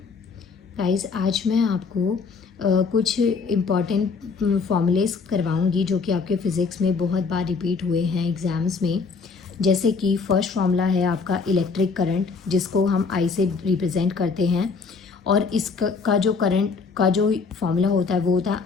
Guys, आज मैं आपको कुछ इम्पॉर्टेंट फॉर्मूलेस करवाऊंगी जो कि आपके फ़िज़िक्स में बहुत बार रिपीट हुए हैं एग्ज़ाम्स में। जैसे कि फर्स्ट फॉर्मूला है आपका इलेक्ट्रिक करंट, जिसको हम आई से रिप्रेजेंट करते हैं। और इसका जो करंट का जो फॉर्मूला होता है वो होता है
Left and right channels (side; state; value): right; quieter; 4.8 dB